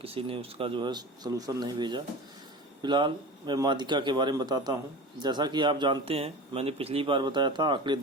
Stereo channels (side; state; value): both; normal; correlation 0.32